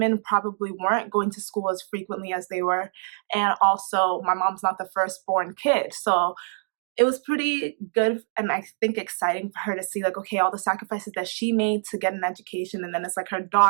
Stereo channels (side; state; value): left; silent; digital silence